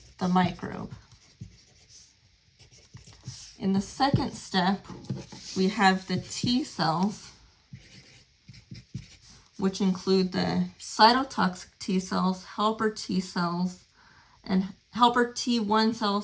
the microbe. In the second step, we have the T cells, which include the cytotoxic T cells, helper T cells, and helper T1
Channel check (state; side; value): identical; both; correlation 1.00